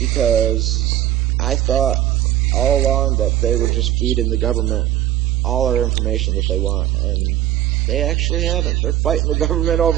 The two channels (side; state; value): left; quieter; 13.0 dB